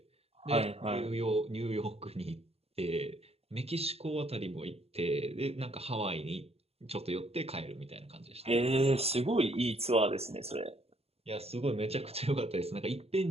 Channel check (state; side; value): late; left; 0.29 ms